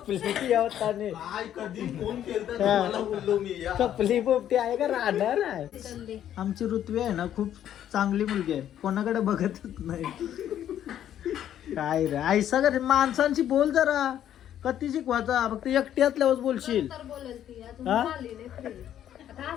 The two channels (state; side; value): quieter; right; 10.8 dB